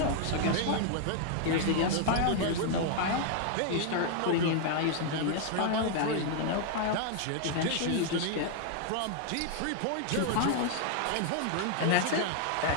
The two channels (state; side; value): different; both; correlation 0.00